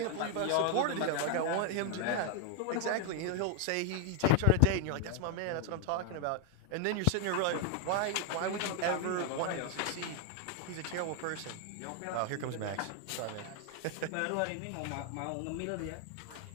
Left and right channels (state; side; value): different; both; correlation 0.00